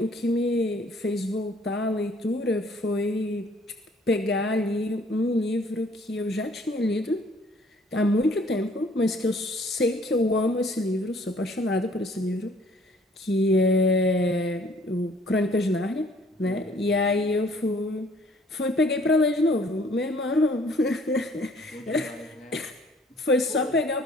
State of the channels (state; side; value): normal; both; correlation 0.58